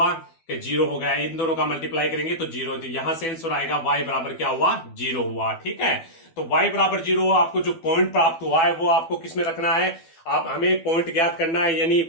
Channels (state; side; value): late; right; 12 ms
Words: कि 0 हो गया। इन दोनों का मल्टीप्लाई करेंगे तो 0, तो यहां से आंसर आएगा y बराबर क्या हुआ, 0 हुआ, ठीक है। तो y बराबर 0, आपको जो पॉइंट प्राप्त हुआ है वो आपको किसमें रखना है, आप हमें पॉइंट ज्ञात करना है। यानी